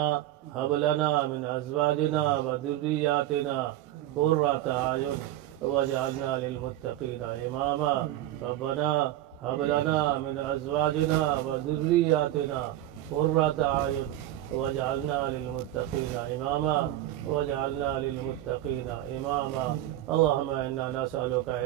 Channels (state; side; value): quieter; left; 14.0 dB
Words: هب لنا من أزواجنا وذرياتنا قرة أعين واجعلنا للمتقين إماما ربنا هب لنا من أزواجنا وذرياتنا قرة أعين واجعلنا للمتقين إماما واجعلنا للمتقين إماما اللهم إنا نسألك